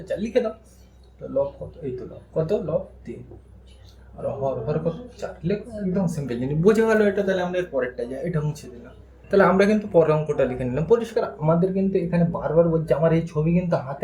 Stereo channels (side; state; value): both; identical; correlation 1.00